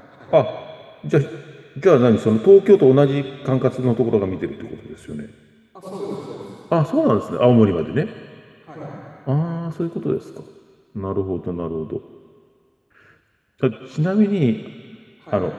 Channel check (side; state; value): both; identical; correlation 1.00